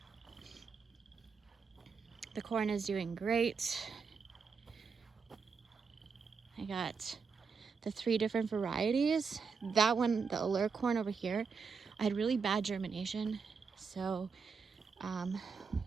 The corn is doing great. I got the 3 different varieties. That one, the allure corn over here, I had really bad germination. So I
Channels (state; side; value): quieter; left; 5.4 dB